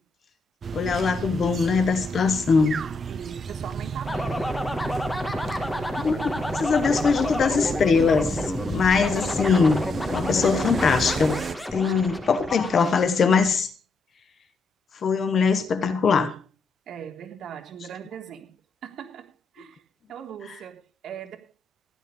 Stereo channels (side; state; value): right; quieter; 3.6 dB